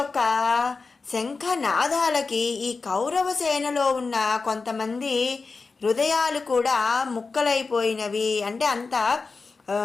శంఖనాదాలకి ఈ కౌరవ సేనలో ఉన్న కొంతమంది హృదయాలు కూడా ముక్కలైపోయినవి, అంటే అంత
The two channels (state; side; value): quieter; right; 4.3 dB